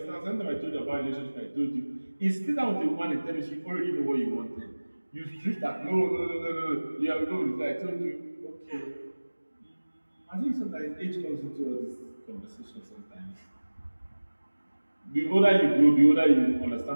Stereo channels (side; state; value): both; inverted; correlation -1.00